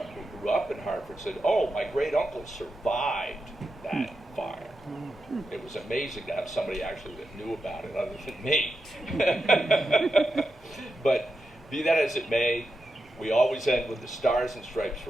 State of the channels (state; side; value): normal; both; correlation 0.88